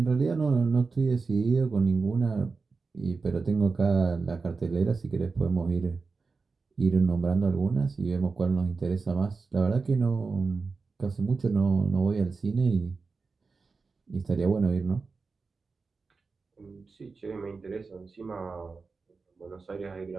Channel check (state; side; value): quieter; left; 4.4 dB